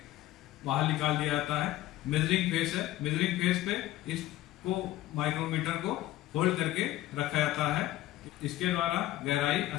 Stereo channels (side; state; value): right; quieter; 15.5 dB